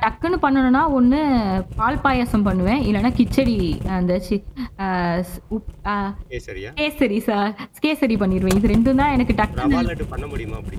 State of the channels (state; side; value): identical; both; correlation 1.00